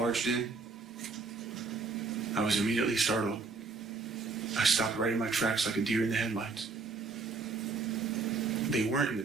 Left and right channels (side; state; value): left; quieter; 4.2 dB